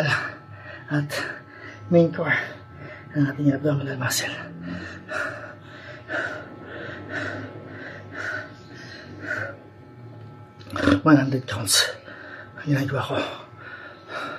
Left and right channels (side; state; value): both; identical; correlation 1.00